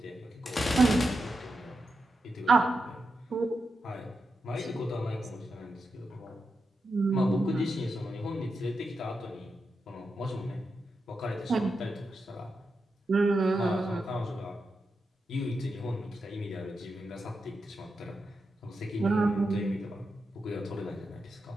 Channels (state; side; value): normal; both; correlation 0.88